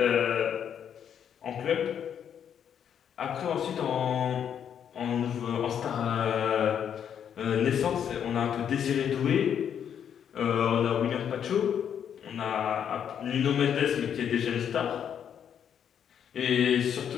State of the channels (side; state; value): right; quieter; 8.6 dB